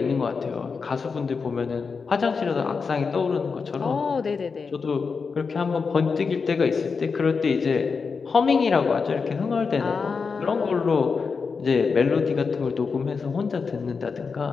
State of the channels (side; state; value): right; quieter; 5.1 dB